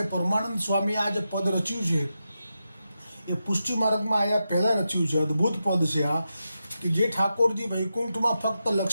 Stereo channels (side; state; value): both; inverted; correlation -0.88